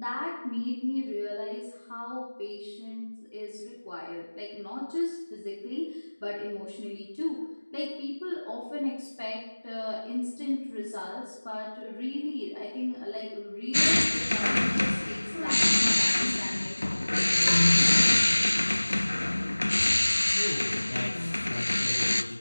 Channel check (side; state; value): both; inverted; correlation -1.00